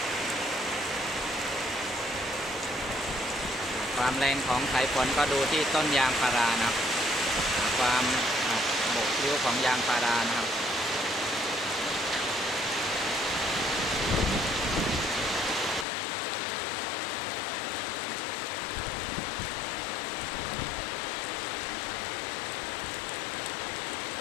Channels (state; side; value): drops out; right; at 15.9 s